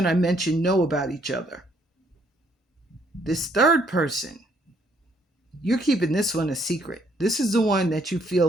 I mentioned know about each other. This third person, you're keeping this one a secret. This is the one that you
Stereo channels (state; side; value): normal; both; correlation 0.67